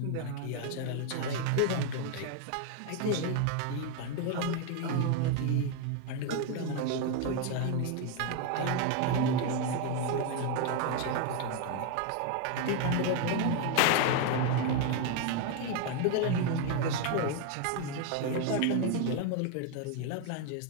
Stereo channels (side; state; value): both; different; correlation 0.01